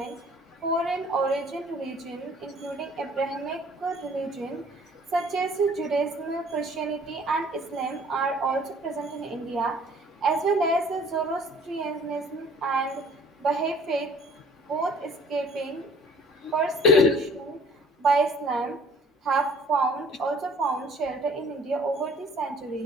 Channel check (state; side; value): normal; both; correlation 0.54